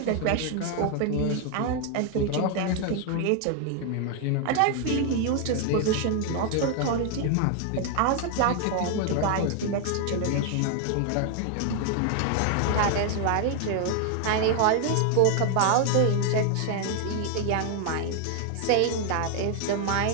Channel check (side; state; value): both; different; correlation 0.01